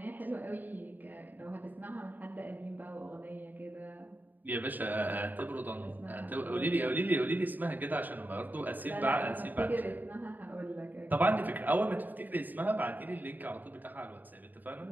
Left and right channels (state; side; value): late; left; 0.087 ms